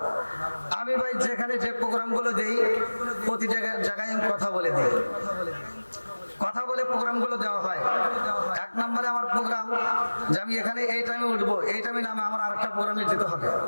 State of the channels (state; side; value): inverted; both; correlation -1.00